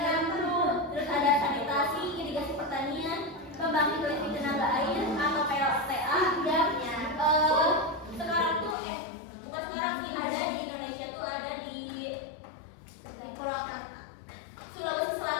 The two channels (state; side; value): drops out; right; at 8.8 s